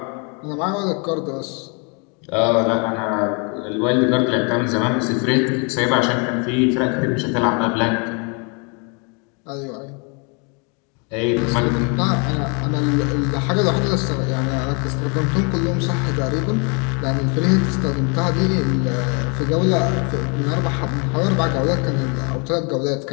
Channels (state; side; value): quieter; right; 34.5 dB